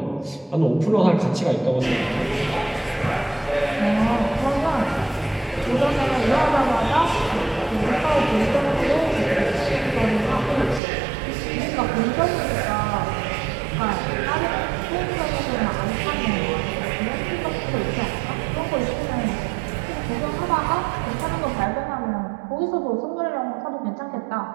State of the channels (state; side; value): drops out; left; at 10.8 s